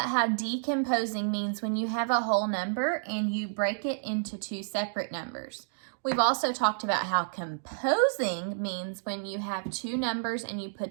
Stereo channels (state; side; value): silent; left; digital silence